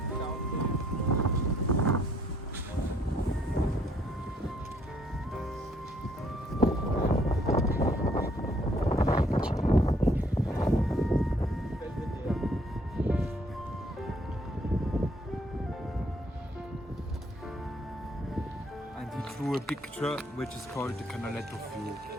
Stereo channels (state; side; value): normal; both; correlation 0.66